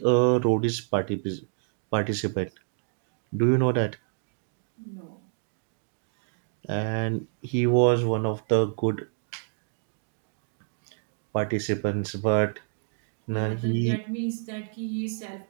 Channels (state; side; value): silent; left; 59 dB below the other